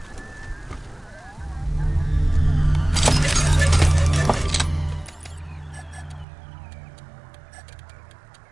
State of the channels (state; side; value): drops out; left; at 6.2 s